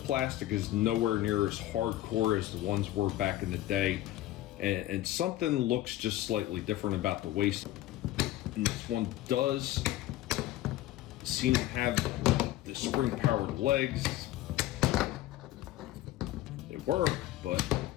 is nowhere near as hardcore as the ones were back in the day. And something looks just slightly different about the waist. And this one does seem to have the spring-powered legs. They work, but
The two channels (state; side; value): quieter; right; 14.9 dB